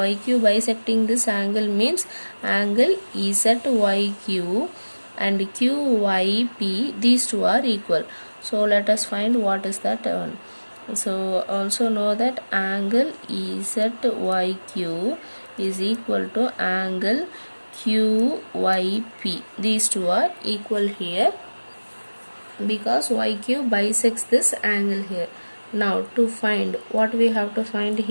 bisecting this angle means angle ZYQ and QYP, these two are equal. So let us find what is that one. So also know that angle ZYQ is equal to angle QYP. These two are equal here because YQ bisects this angle here. Now to find, what we have to find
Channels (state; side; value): inverted; both; correlation -1.00